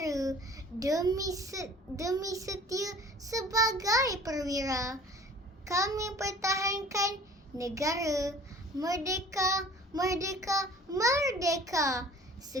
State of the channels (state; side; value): normal; both; correlation 0.47